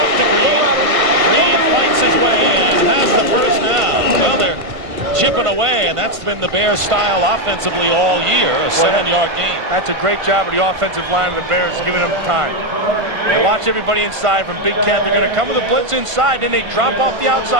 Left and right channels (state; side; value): late; left; 1.5 ms